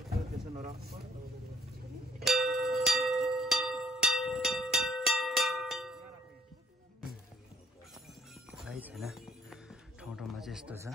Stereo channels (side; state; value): both; normal; correlation 0.61